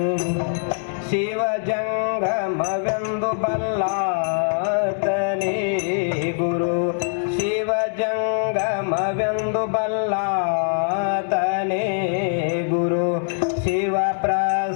ಶಿವ ಜಂಗಮವೆಂದು ಬಲ್ಲಾತನೇ ಗುರು ಶಿವ ಜಂಗಮವೆಂದು ಬಲ್ಲಾತನೇ ಗುರು ಶಿವ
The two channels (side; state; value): right; silent; digital silence